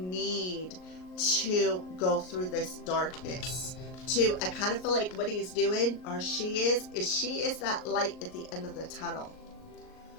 to go through this darkness. I kind of feel like what he's doing, or she is that light at the end of the tunnel.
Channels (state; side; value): late; right; 38 ms